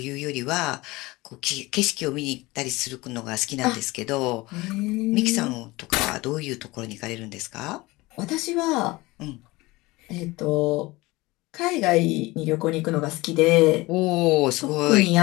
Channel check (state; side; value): quieter; right; 21.3 dB